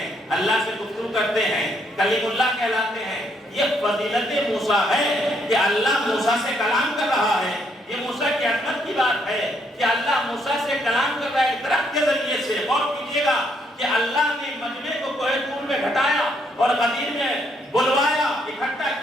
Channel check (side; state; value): both; normal; correlation 0.72